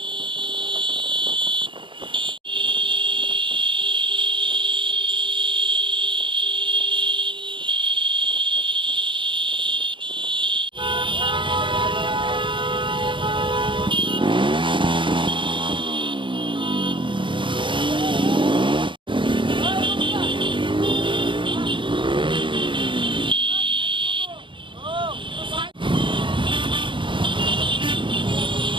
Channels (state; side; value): late; left; 0.24 ms